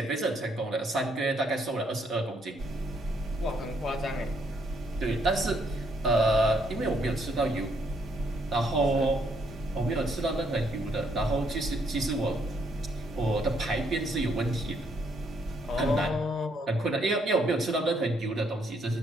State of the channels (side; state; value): both; normal; correlation 0.71